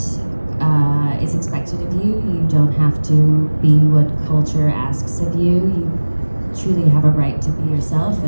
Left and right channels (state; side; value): inverted; both; correlation -1.00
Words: is expected of you. You don't have to be what culture asks of you. You truly have a right to be yourself